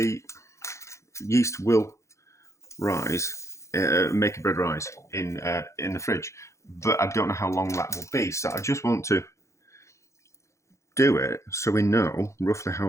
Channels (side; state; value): right; late; 0.14 ms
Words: yeast will rise, make a bread rise in the fridge, but I don't know how long that will be. So I just want to do it so we know roughly how